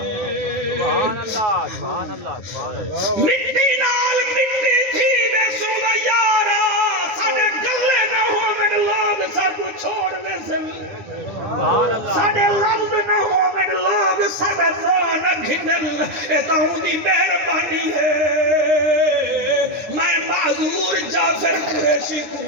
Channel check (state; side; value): late; left; 9.7 ms